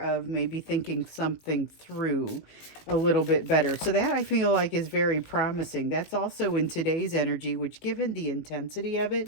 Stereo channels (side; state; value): right; late; 19 ms